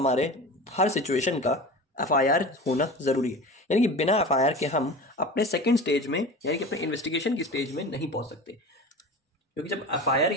हर सिचुएशन का एफआईआर होना जरूरी है, यानी कि बिना एफआईआर के हम अपने सेकंड स्टेज में, यानी कि अपने इन्वेस्टिगेशन की स्टेज में नहीं पहुंच सकते। क्योंकि जब एफआईआर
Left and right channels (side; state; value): both; normal; correlation 0.33